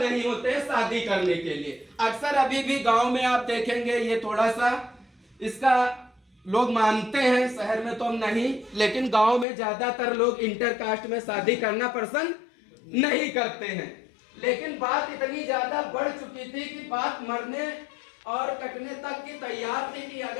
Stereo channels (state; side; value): drops out; right; at 9.5 s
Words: नहीं होते शादी करने के लिए। अक्सर अभी भी गांव में आप देखेंगे, ये थोड़ा सा इसका लोग मानते हैं, शहर में तो हम नहीं, लेकिन गांव में ज्यादातर लोग इंटरकास्ट में शादी करना पसंद नहीं करते हैं। लेकिन बात इतनी ज्यादा बढ़ चुकी थी कि बात मरने और कटने तक की तैयार थी कि